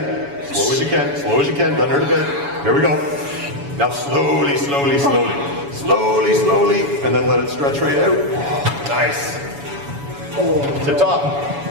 Slow as you can. Slow as you can. Doesn't hurt a bit. Here we go. Now slowly, slowly, slowly. Slowly, slowly. And then let it stretch right out. Nice. Tip top.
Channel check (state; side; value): late; left; 7.1 ms